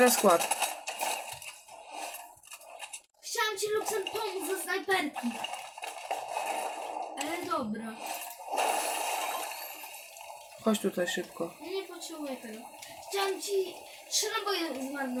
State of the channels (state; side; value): identical; both; correlation 1.00